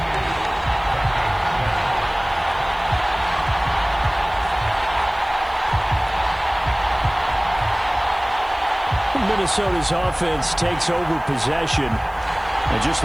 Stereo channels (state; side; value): noise; right; hiss, 29 dB below the sound